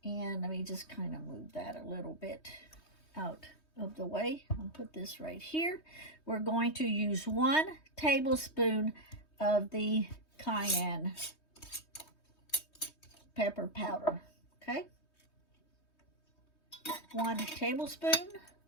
and let me just kind of move that a little bit out of the way. I'll put this right here. We're going to use 1 tablespoon of the cayenne pepper powder. Okay, 1 tablespoon.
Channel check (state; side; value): late; right; 3.2 ms